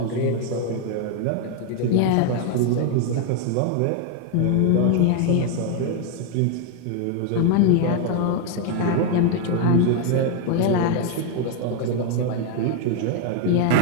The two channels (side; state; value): both; different; correlation 0.01